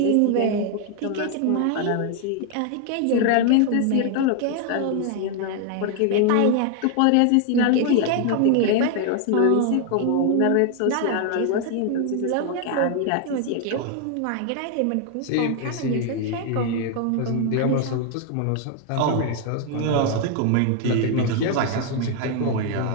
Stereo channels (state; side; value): different; both; correlation 0.00